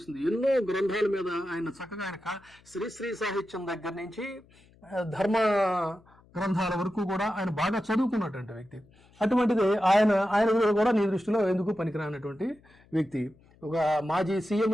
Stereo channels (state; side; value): noise; left; hum, 29 dB below the sound